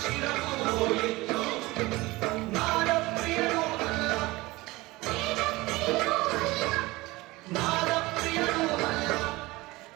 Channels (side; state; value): left; quieter; 20.9 dB